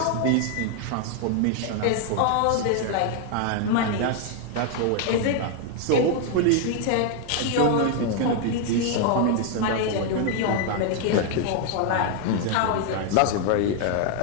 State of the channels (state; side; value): different; both; correlation 0.00